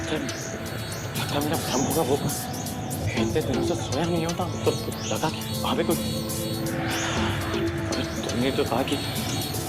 लगता है मेरा भ्रम होगा। वो इतने दिनों से सोया नहीं होता तो लगा कि वहां पे कोई। तुमने तो कहा कि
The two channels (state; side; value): identical; both; correlation 1.00